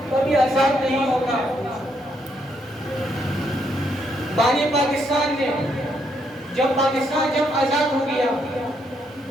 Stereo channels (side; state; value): both; normal; correlation 0.75